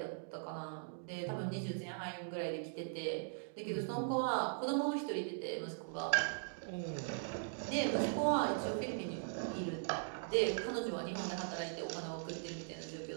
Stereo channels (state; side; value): silent; left; digital silence